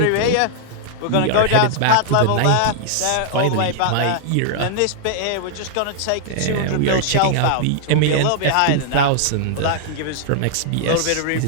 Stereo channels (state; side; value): different; both; correlation -0.01